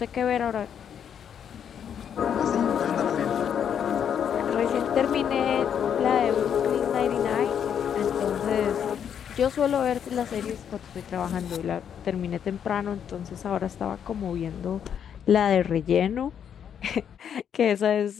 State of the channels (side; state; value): right; quieter; 8.4 dB